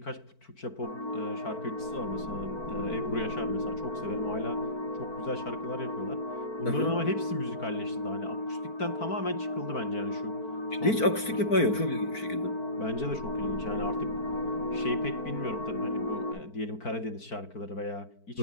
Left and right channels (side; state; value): right; late; 4.5 ms